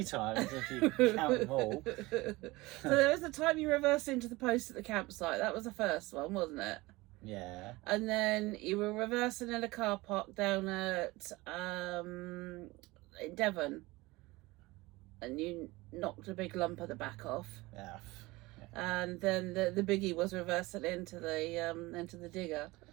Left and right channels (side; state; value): left; quieter; 21.3 dB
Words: times if you count them all. So there was the time you reversed into the post at the campsite. That was the first one, wasn't it? Yeah. And then you were reversing in a car park down at in Devon, and you knocked a big lump at the back off. Yeah. And then the biggie was reversing into the digger.